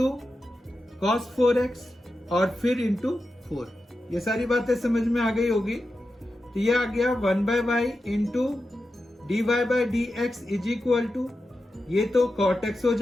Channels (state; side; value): normal; both; correlation 0.90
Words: cos 4x और फिर इंटू 4। ये सारी बातें समझ में आ गई होगी। तो ये आ गया 1/y into dy/dx is equal to, ये तो cot x हो